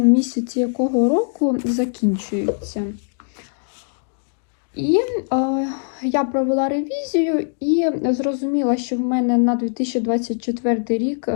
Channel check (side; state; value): right; silent; digital silence